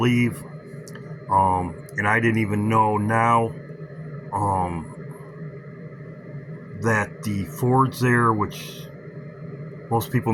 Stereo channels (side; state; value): both; identical; correlation 1.00